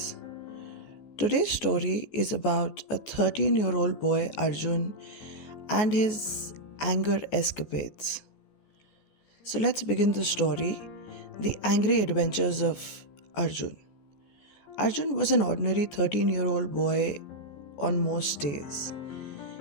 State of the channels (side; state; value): right; late; 14 ms